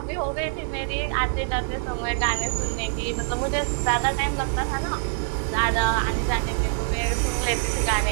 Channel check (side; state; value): left; silent; 59 dB below the other